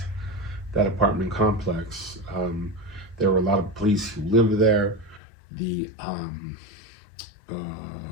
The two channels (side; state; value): right; drops out; at 5.2 s